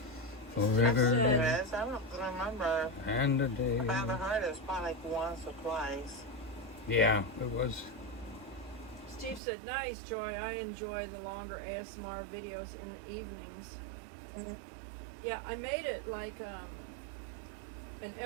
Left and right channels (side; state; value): left; drops out; at 9.4 s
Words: Forever There is. I don't remember. and a day. If I ever heard it, it's probably like once or twice. Yeah, it was. Steve said, "Nice, Joy. I enjoy the longer ASMR videos in the evenings." Mm-hmm. Yeah, I made it like an